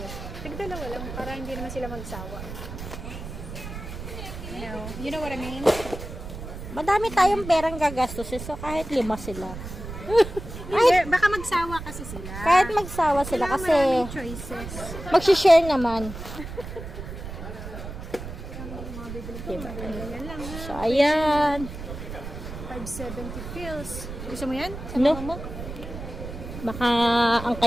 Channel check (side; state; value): right; noise; rumble, 10 dB below the sound